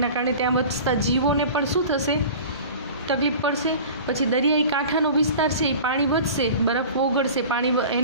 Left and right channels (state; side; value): inverted; both; correlation -0.39